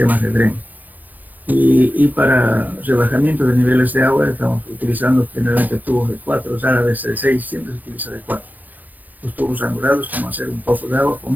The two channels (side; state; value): left; late; 0.083 ms